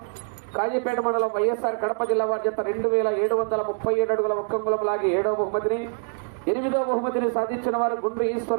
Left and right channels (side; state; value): left; silent; 57 dB below the other